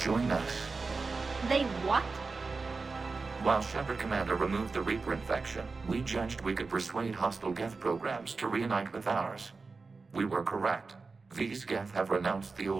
us. They what? While Shepard Commander removed the Reaper infection, we judged we could persuade hostile Geth programs to reunite with ours. We were correct. These Geth have renounced the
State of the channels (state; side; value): quieter; left; 4.2 dB